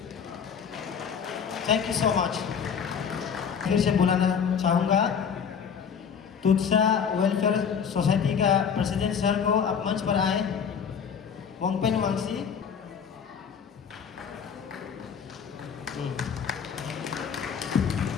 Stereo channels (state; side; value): quieter; right; 7.1 dB